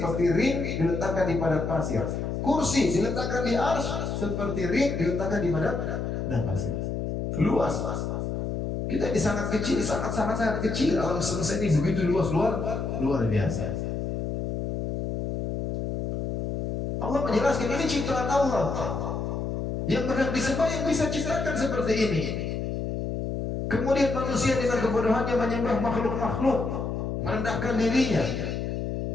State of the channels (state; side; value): noise; left; hum, 2 dB below the sound